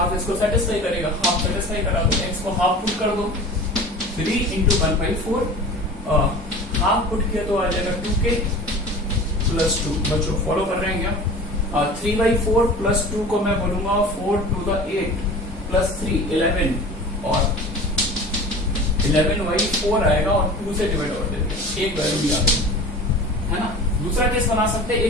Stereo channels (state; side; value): normal; both; correlation 0.38